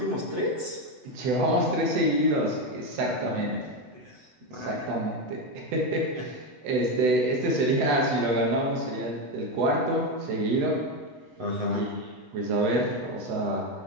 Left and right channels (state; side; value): late; left; 8.0 ms